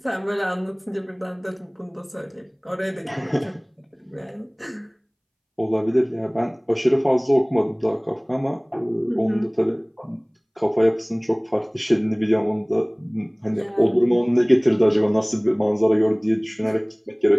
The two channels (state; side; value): identical; both; correlation 1.00